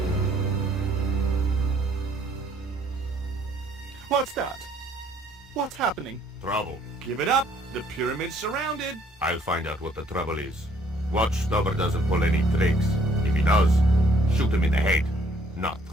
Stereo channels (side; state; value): both; normal; correlation 0.63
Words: What's that? What's happening? Trouble. Give it up. The pyramid's surrounded. I'll find out what the trouble is. Watch Stubber doesn't pull any tricks. If he does, shoot him in the head, not